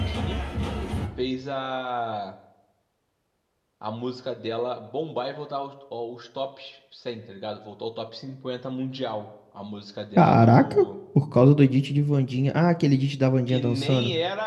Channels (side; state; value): both; identical; correlation 1.00